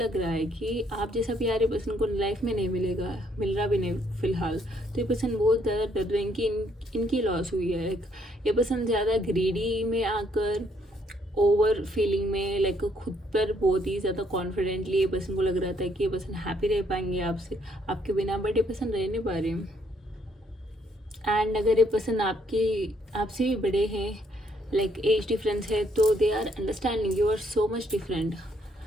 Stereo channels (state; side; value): normal; both; correlation 0.69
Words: रहा है कि आप जैसा प्यार ये पर्सन को लाइफ में नहीं मिलेगा, मिल रहा भी नहीं फिलहाल। तो ये पर्सन बहुत ज़्यादा डर रहे हैं कि इनकी लॉस हुई है। ये पर्सन ज़्यादा ग्रीडी में आकर, ओवर फीलिंग में, लाइक खुद पर बहुत ही ज़्यादा कॉन्फिडेंटली ये पर्सन को लग रहा था कि ये पर्सन हैप्पी रह पाएंगे आपसे, आपके बिना, बट ये पर्सन रह नहीं पा रहे। एंड अगर ये पर्सन आपसे भी बड़े हैं, लाइक एज डिफरेंस है, तो they are understanding you are so much different.